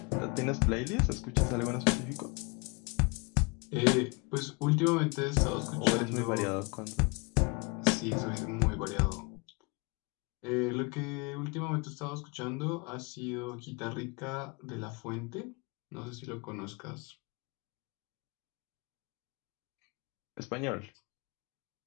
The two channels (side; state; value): right; quieter; 29.7 dB